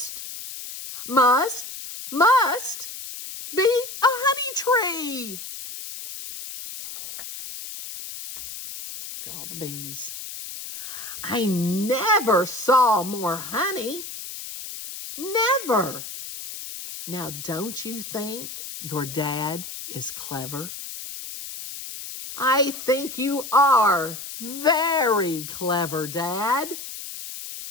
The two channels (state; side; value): noise; left; hiss, 10 dB below the sound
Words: be a honey tree. Look at all the bees. I never saw more honey. Never. Now, don't you think your dad is clever? I think you are very clever, Dad.